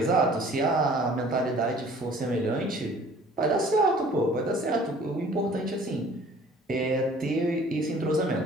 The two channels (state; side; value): normal; both; correlation 0.51